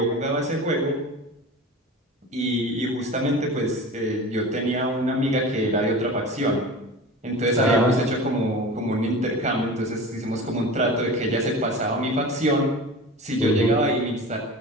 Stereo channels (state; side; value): normal; both; correlation 0.34